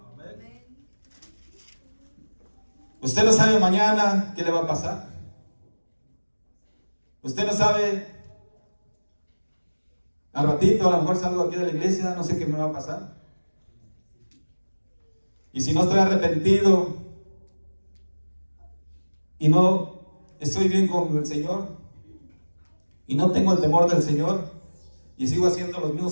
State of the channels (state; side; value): inverted; both; correlation -1.00